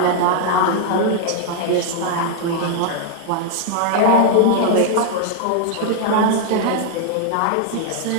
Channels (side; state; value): both; different; correlation 0.00